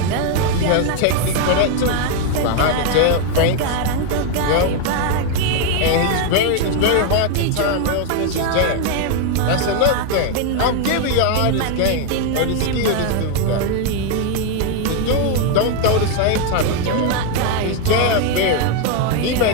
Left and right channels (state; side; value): different; both; correlation 0.00